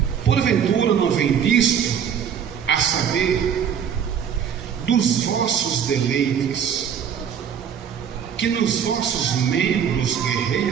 Porventura não vem disto, a saber, dos vossos deleites, que nos vossos membros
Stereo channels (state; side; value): quieter; left; 8.0 dB